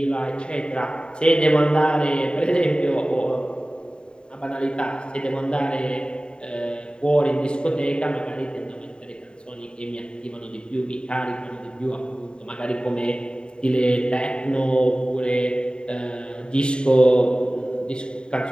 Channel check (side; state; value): right; late; 0.050 ms